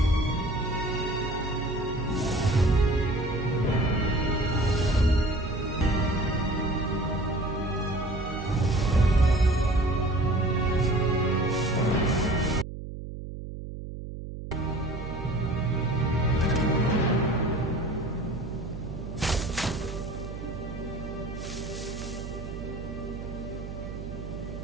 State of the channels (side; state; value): right; noise; hum, 9 dB below the sound